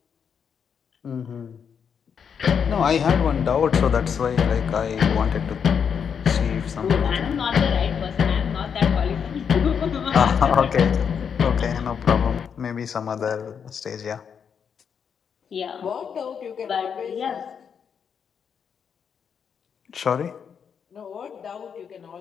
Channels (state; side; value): quieter; right; 7.1 dB